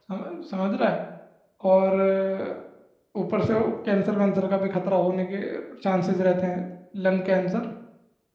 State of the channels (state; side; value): identical; both; correlation 1.00